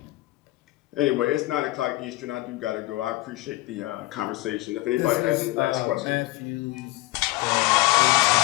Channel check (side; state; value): right; quieter; 19.4 dB